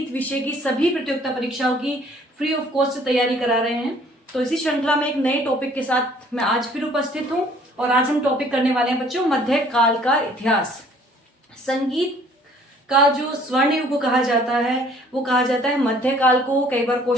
विषय की सभी प्रतियोगिता परीक्षाओं की फ्री ऑफ कॉस्ट तैयारी करा रहे हैं। तो इसी श्रृंखला में एक नए टॉपिक के साथ मैं आज फिर उपस्थित हूँ और आज हम टॉपिक करने वाले हैं बच्चों मध्यकाल का इतिहास। संगीत का जो स्वर्ण युग कहा जाता है वो कहा जाता है मध्यकाल को। कई बार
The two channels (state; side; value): normal; both; correlation 0.57